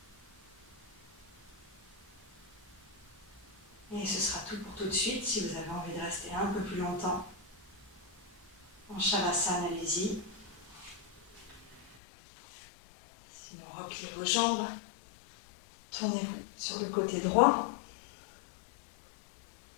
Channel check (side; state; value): right; drops out; at 12.0 s